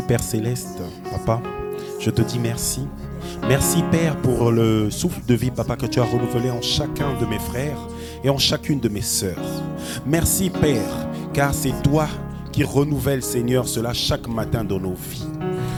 Père Céleste, Papa, je te dis merci. Merci, Père, pour le souffle de vie, Papa, que tu as renouvelé en chacun de mes frères et en chacune de mes sœurs. Merci, Père, car c'est toi qui renouvelles, Seigneur, cela chaque matin dans nos vies.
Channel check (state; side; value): identical; both; correlation 1.00